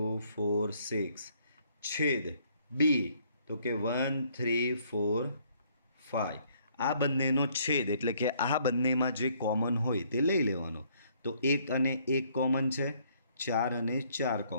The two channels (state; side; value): inverted; both; correlation -0.65